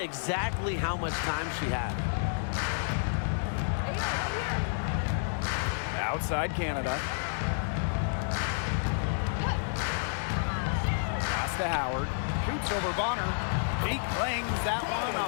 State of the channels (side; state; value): right; silent; digital silence